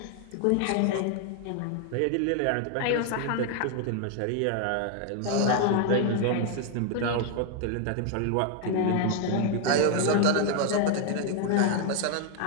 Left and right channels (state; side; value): different; both; correlation 0.00